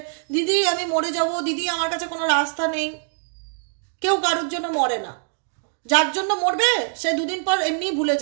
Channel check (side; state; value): left; silent; 61 dB below the other